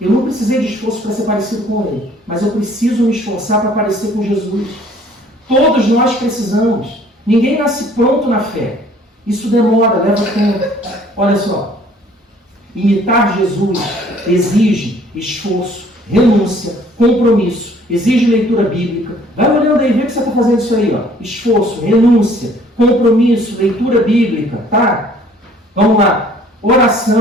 não precisei de esforço para ser parecido com ele, mas eu preciso me esforçar para parecer com Jesus. Todos nós precisamos. Ninguém nasce pronto na fé. Isso demora, leva tempo. Olha só. Imitar Jesus exige esforço, renúncia, compromisso, exige leitura bíblica. Vai olhando aí, vê que você está fazendo isso aí, ó. Esforço, renúncia, compromisso, leitura bíblica, tá? Vamos lá.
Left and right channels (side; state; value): both; normal; correlation 0.57